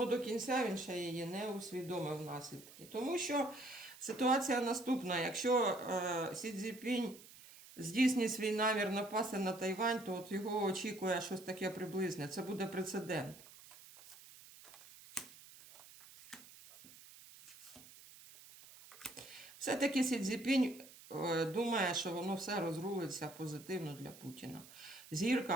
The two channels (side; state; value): right; noise; hiss, 19 dB below the sound